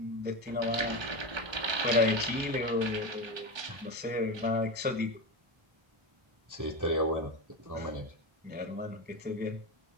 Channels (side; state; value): left; late; 1.3 ms